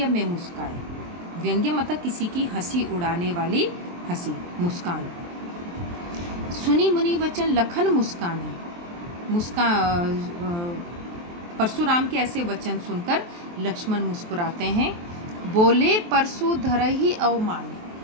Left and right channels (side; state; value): left; late; 23 ms